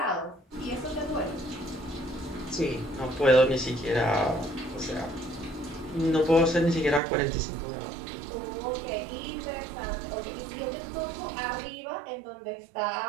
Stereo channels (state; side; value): drops out; left; at 7.0 s